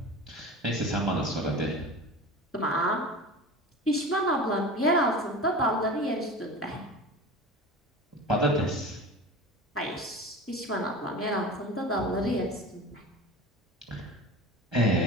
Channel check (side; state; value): both; normal; correlation 0.33